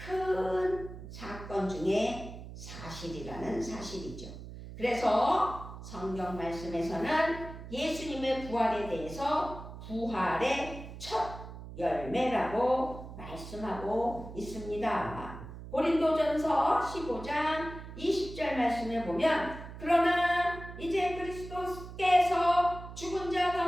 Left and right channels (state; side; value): noise; right; hum, 12 dB below the sound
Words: 사건 중에 사실이라는 사실이죠. 그래서 성경 말씀에서는 예수님의 부활에 대해서 부활의 첫 열매라고 말씀하고 있습니다. 고린도전서 15장 20절 말씀에 보면, 그러나 이제 그리스도께서 죽은 자